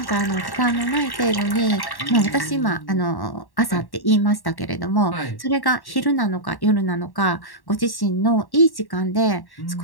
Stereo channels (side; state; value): right; late; 1.1 ms